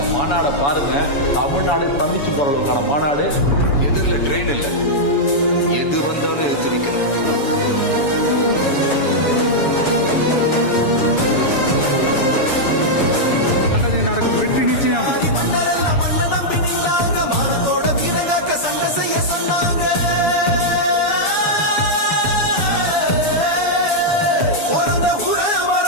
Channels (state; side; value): late; right; 7.0 ms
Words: மாநாட பாருங்க, தமிழ்நாடு ஸ்தம்பிச்சு போற அளவுக்கான மாநாடு. எதிரில ட்ரெயின் இல்ல, எது வந்தாலும் எடுத்து வைக்கணும். நல்லதே நடக்கும், வெற்றி நிச்சயம்.